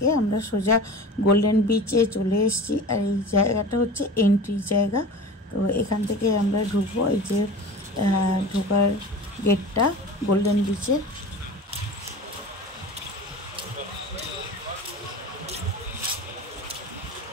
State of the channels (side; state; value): both; normal; correlation 0.35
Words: আমরা সোজা গোল্ডেন বিচে চলে এসেছি। আর এই জায়গাটা হচ্ছে এন্ট্রি জায়গা। তো এখান থেকে আমরা ঢুকবো, এই যে ঢোকার গেটটা গোল্ডেন বিচে।